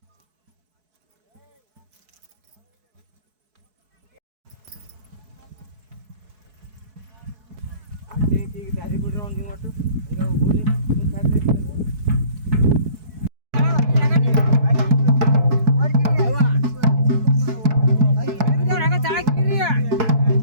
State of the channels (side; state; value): left; late; 4.6 ms